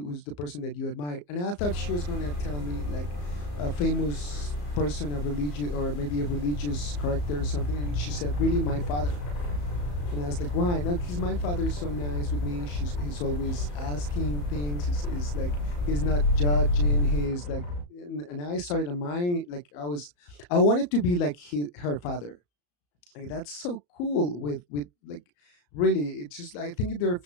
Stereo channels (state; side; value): late; right; 34 ms